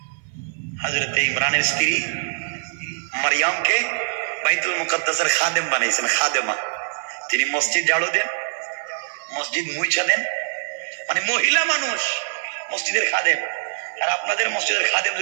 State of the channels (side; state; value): left; silent; 55 dB below the other